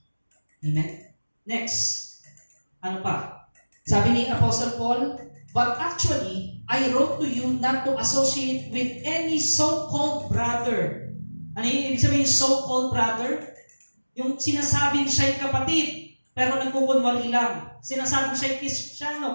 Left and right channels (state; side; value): inverted; both; correlation -1.00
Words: Amen? Next. Ano pa? Sabi ni Apostle Paul, but actually, I wrote to you not to associate with any so-called brother. Ano yung ibig sabihin so-called brother? Yung sinasabing siya'y kapatid, pero nagkukunwari lang. Sinasabing siya'y Kristiyano,